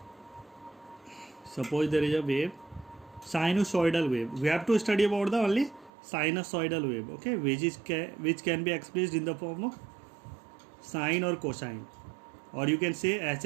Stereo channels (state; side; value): drops out; left; at 5.9 s